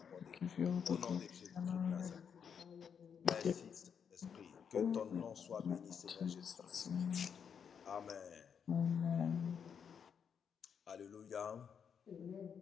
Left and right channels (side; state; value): right; quieter; 7.2 dB